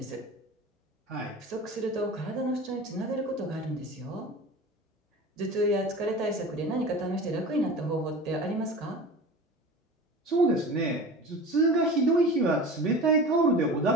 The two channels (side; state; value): both; normal; correlation 0.35